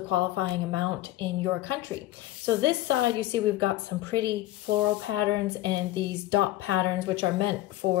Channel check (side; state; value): right; quieter; 15.4 dB